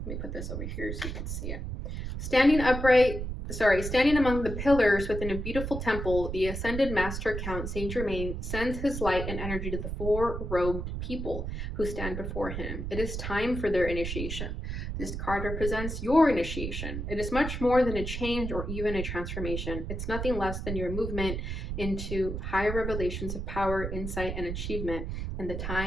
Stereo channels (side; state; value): right; noise; rumble, 4 dB below the sound